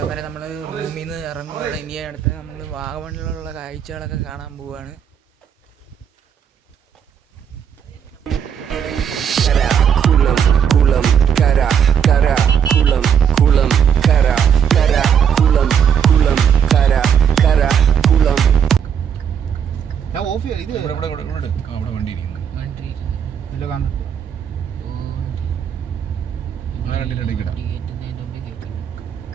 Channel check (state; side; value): quieter; left; 8.0 dB